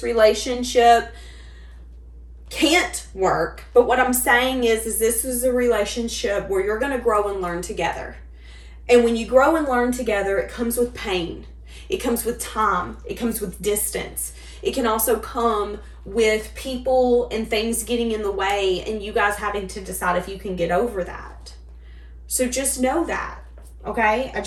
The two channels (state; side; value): identical; both; correlation 1.00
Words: relationship can't work, but what I'm saying is this is a relationship where you're going to grow and learn together. And when you grow and learn together, it comes with pain. It comes with time. It comes with distance. It can also come with people and things getting in the way and you guys having to decide if you can get over that. So just know that, okay? I